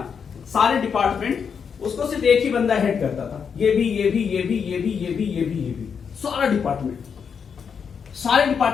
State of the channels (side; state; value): right; quieter; 6.6 dB